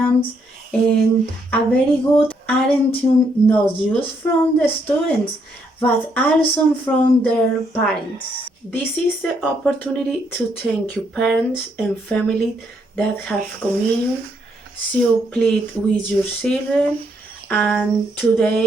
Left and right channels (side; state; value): both; normal; correlation 0.74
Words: and a very good attitude not just from the students but also from their parents. This is the opportunity to thank you parents and family that have communion, so plead with your children, and